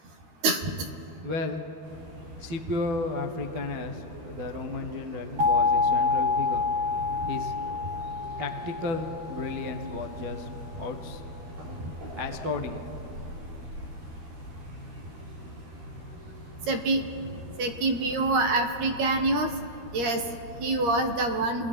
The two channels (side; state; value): left; late; 13 ms